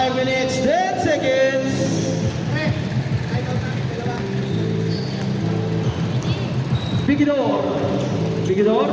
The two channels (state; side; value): identical; both; correlation 1.00